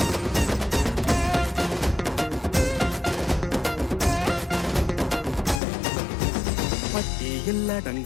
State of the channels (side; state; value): right; drops out; at 5.6 s